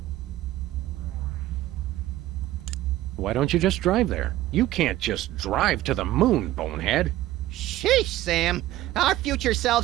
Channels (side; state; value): left; quieter; 15.1 dB